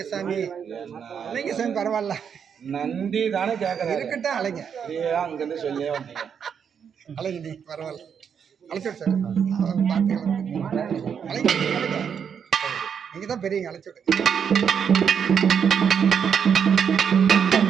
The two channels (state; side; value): quieter; left; 7.4 dB